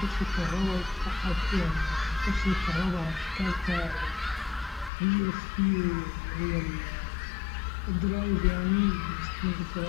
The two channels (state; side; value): drops out; right; at 4.9 s